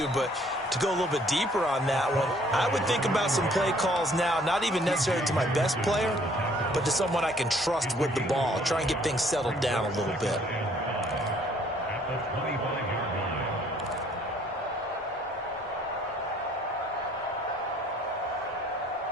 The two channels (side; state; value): both; normal; correlation 0.60